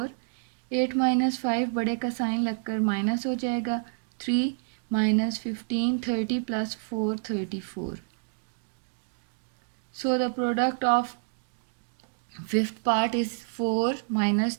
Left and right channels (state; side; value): silent; left; digital silence